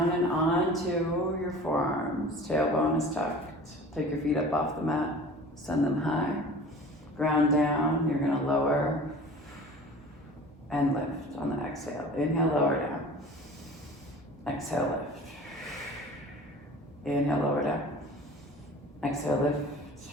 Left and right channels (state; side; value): normal; both; correlation 0.42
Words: and onto your forearms. Tailbone is tucked. Take your feet up off the mat. Send them high. Ground down. You're going to lower and lift on the exhale. Inhale, lower down. Exhale, lift. Inhale, lower down. Exhale, lift.